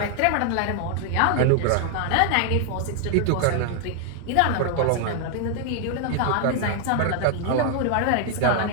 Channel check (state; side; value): different; both; correlation 0.00